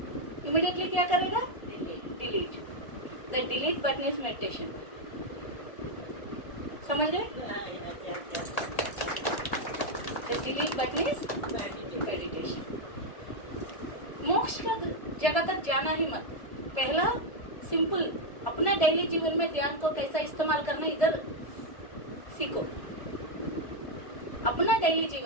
इमीडिएटली क्या करेगा, delete. The delete button is meditation. समझ गए, the delete button is meditation. मोक्ष का जगह तक जाना ही मत, पहला सिंपल अपना डेली जीवन में ध्यान को कैसा इस्तेमाल करना इधर सीखो, अपना डेली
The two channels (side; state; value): right; late; 1.7 ms